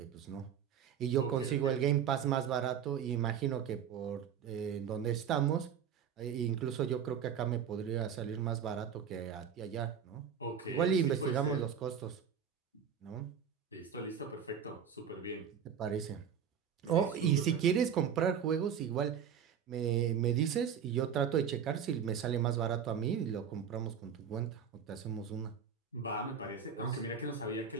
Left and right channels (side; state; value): left; quieter; 7.8 dB